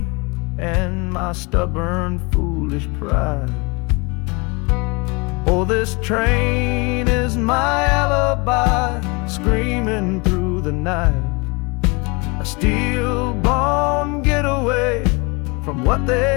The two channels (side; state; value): right; quieter; 28.4 dB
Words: and my stubborn, foolish pride. Oh, this train is my alibi, screaming through the night, a steel-born getaway from what